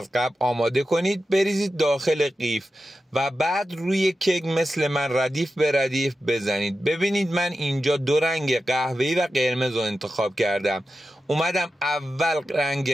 قبل آماده کنید، بریزید داخل قیف و بعد روی کیک مثل من ردیف به ردیف بزنید. ببینید من اینجا دو رنگ قهوه‌ای و قرمز رو انتخاب کردم. اومدم اول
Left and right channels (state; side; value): normal; both; correlation 0.92